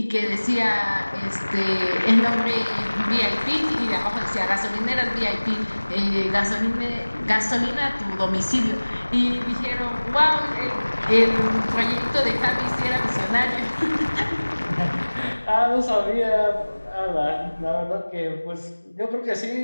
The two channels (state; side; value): inverted; both; correlation -1.00